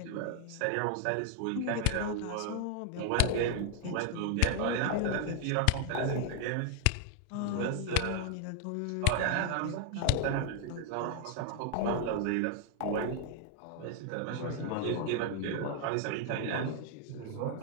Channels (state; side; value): different; both; correlation 0.00